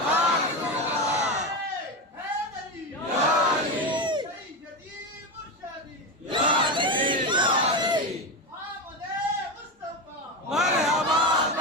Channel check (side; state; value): both; normal; correlation 0.16